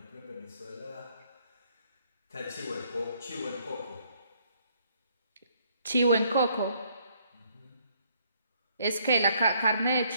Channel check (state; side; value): inverted; both; correlation -0.67